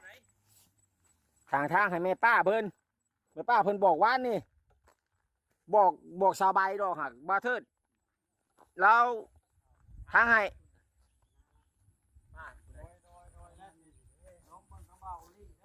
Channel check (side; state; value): both; identical; correlation 1.00